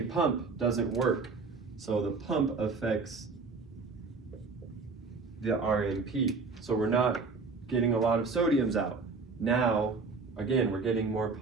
pump doesn't work. So the pump affects the RMP. So we're not getting a lot of sodiums out. Now, again, we're getting more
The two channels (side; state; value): left; quieter; 4.4 dB